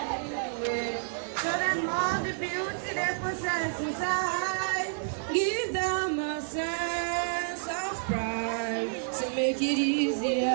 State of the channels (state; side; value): silent; left; digital silence